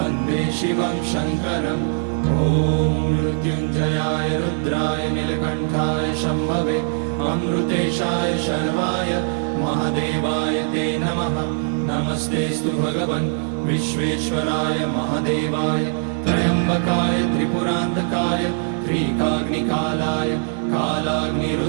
शिवं शङ्करम् ॐ मृत्युञ्जयाय रुद्राय नीलकण्ठाय शम्भवे अमृतेशाय शर्वाय महादेवाय ते नमः। नमस्तेस्तु भगवन् विश्वेश्वराय महादेवाय त्र्यम्बकाय त्रिपुरान्तकाय त्रिकाग्निकालाय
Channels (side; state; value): left; silent; digital silence